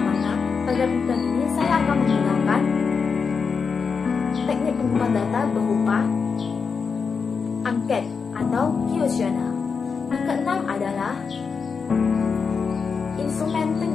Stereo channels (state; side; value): quieter; right; 5.5 dB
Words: mana pada penelitian ini saya akan menggunakan teknik pengumpulan data berupa angket atau kuesioner. Yang keenam adalah instrumen